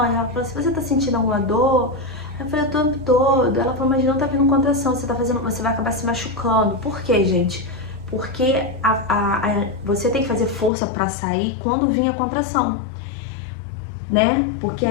ela falou, se você tá sentindo alguma dor... Aí eu falei, o tempo todo. Ela falou, mas não tá vindo contração, você vai acabar se machucando. Por quê, gente? Porque você tem que fazer força pra sair quando vir a contração, né? Porque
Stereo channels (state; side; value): drops out; right; at 10.7 s